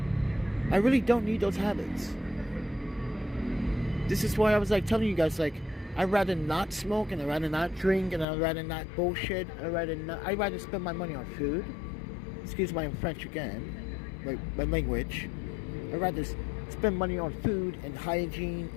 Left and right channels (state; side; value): drops out; right; at 8.2 s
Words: I really don't need those habits. This is why I was telling you guys, I'd rather not smoke, and I'd rather not drink, and I'd rather not bullshit. I'd rather spend my money on food. Excuse my French again, my language. I'd rather spend money on food and hygiene